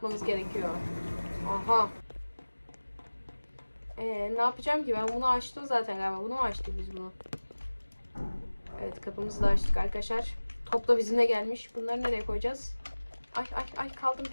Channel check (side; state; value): both; inverted; correlation -1.00